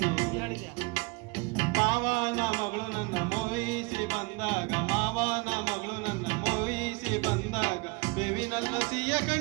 ಮಾವನ ಮಗಳು ನನ್ನ ಮೋಹಿಸಿ ಬಂದಾಗ, ಮಾವನ ಮಗಳು ನನ್ನ ಮೋಹಿಸಿ ಬಂದಾಗ ಬೇವಿನಲ್ಲ ಸಿಹಿಯ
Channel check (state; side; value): quieter; left; 27.8 dB